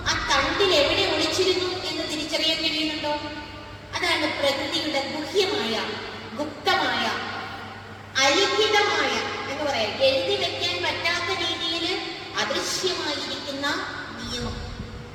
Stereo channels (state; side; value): identical; both; correlation 1.00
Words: ആ തണ്ടിൽ എവിടെ ഒളിച്ചിരുന്നു എന്ന് തിരിച്ചറിയാൻ കഴിയുന്നുണ്ടോ? അതാണ് പ്രകൃതിയുടെ ഗുഹ്യമായ, ഗുപ്തമായ, അലിഖിതമായ എന്ന് പറയാം, എഴുതി വെക്കാൻ പറ്റാത്ത രീതിയിൽ അദൃശ്യമായിരിക്കുന്ന നിയമം.